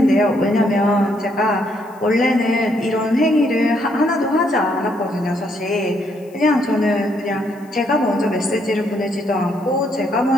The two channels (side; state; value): left; noise; hiss, 30 dB below the sound